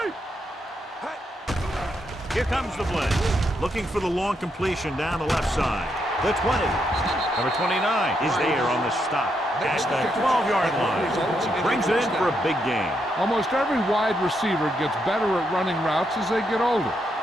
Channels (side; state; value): both; normal; correlation 0.80